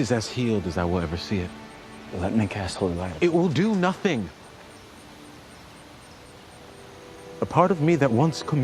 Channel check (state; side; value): identical; both; correlation 1.00